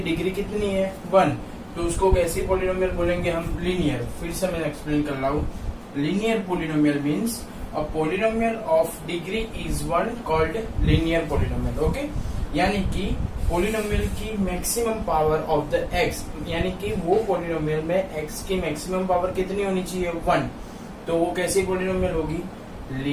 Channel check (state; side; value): identical; both; correlation 1.00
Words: डिग्री कितनी है? 1। तो उसको कैसी polynomial बोलेंगे हम? linear। फिर से मैं एक्सप्लेन कर रहा हूँ। linear polynomial means a polynomial of degree is 1 called linear polynomial. Okay, यानी कि पोलिनोमियल की maximum power of the x, यानी कि वो पोलिनोमियल में एक्स की मैक्सिमम पावर कितनी होनी चाहिए? 1। तो वो कैसी पोलिनोमियल होगी?